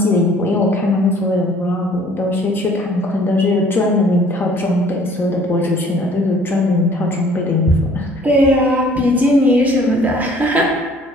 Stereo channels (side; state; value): both; normal; correlation 0.55